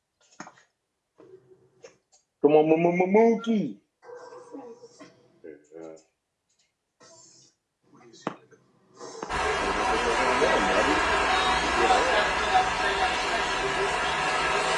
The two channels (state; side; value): identical; both; correlation 1.00